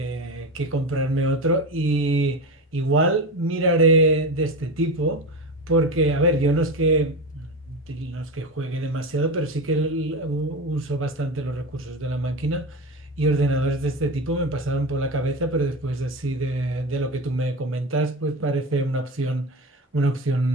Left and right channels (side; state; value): both; normal; correlation 0.23